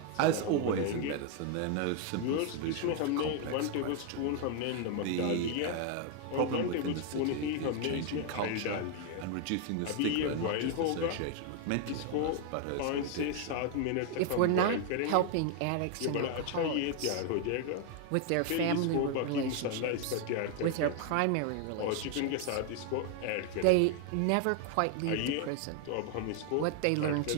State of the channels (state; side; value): different; both; correlation 0.00